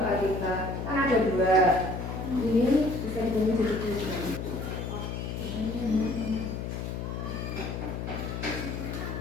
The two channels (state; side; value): noise; left; hum, 5 dB below the sound